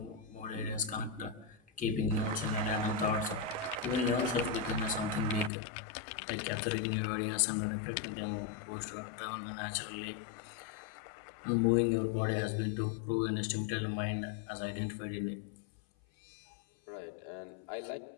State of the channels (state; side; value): drops out; right; at 5.5 s